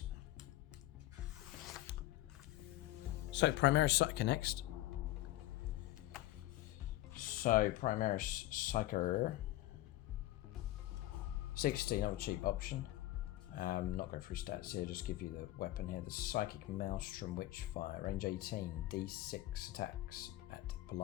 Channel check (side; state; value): right; quieter; 16.1 dB